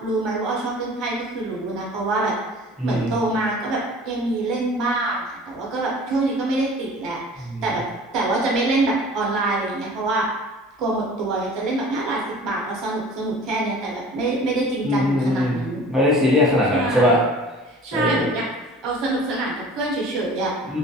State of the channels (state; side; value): normal; both; correlation 0.44